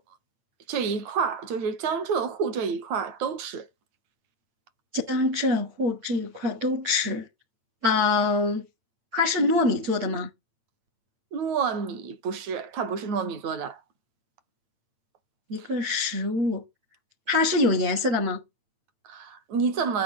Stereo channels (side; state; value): left; late; 8.8 ms